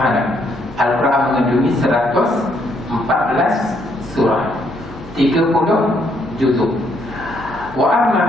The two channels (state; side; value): normal; both; correlation 0.71